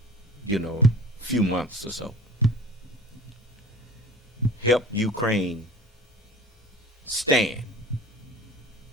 a few months or so. Help Ukraine stand.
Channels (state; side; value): normal; both; correlation 0.42